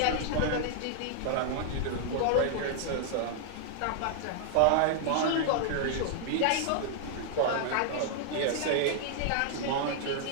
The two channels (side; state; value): both; different; correlation -0.01